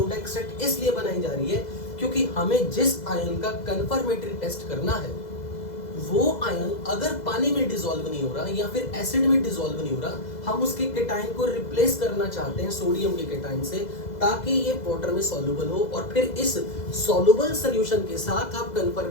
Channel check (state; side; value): late; right; 2.0 ms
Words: एक्सट्रैक्ट इसलिए बनाई जा रही है क्योंकि हमें जिस आयन का कंफर्मेटरी टेस्ट करना है वो आयन अगर पानी में डिसॉल्व नहीं हो रहा या फिर एसिड में डिसॉल्व नहीं हो रहा, हम उसके केटायन को रिप्लेस करना चाहते हैं सोडियम के केटायन से, ताकि ये वाटर में सॉल्युबल हो, और फिर इस सॉल्युबल सॉल्यूशन के साथ आप